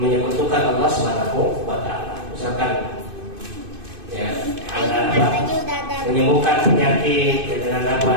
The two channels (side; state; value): left; late; 2.5 ms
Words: Allah Subhanahu wa Ta'ala. Misalkan ya, ada apa? Menyembuhkan penyakit dengan